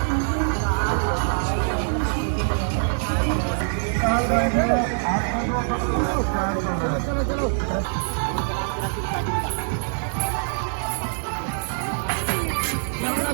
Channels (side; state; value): left; silent; 56 dB below the other